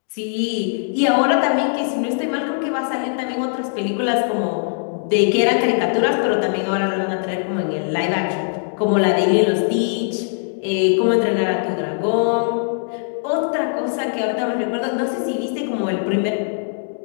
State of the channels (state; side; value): silent; right; digital silence